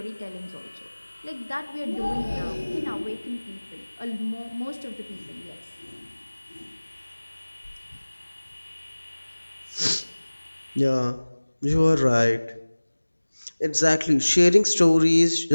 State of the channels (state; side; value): inverted; both; correlation -1.00